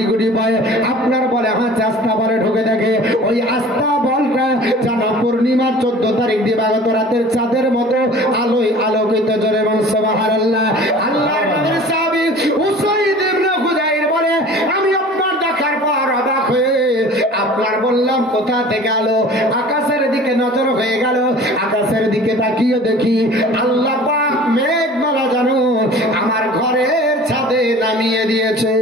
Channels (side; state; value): both; normal; correlation 0.44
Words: গুটি পায় আপনার বলে হাতে আস্তা বলে ঢুকে দেখে, ওই আস্তা বলটা যেন পূর্ণিমার 14 তারিখ দিবাগত রাতের চাঁদের মতো আলোয় আলোকিত। জোরে বল সুবহানাল্লাহ। আল্লাহর নবীর সাহাবী উসাইদ ইবনে হুযাইর বলে, আমি আপনার দেখার পর অবাক হয়ে আপনার বললাম কোথা থেকে আলো, আকাশের দিকে নজর হয়ে গেল। আকাশের দিকে তাকিয়ে দেখি আল্লাহ পাক মেঘমালা যেন আমার ঘরের ছাদে নামিয়ে দিয়েছে।